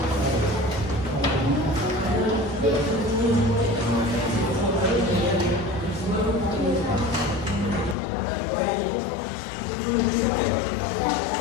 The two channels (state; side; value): drops out; right; at 8.0 s